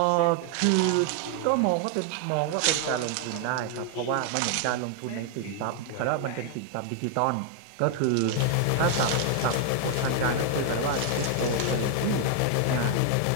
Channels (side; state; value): both; different; correlation 0.00